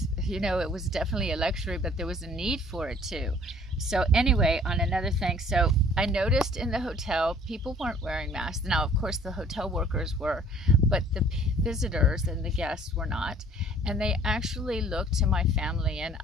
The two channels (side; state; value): both; normal; correlation 0.55